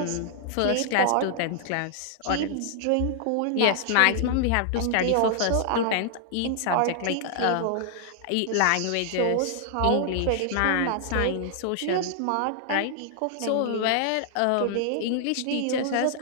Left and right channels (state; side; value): different; both; correlation 0.00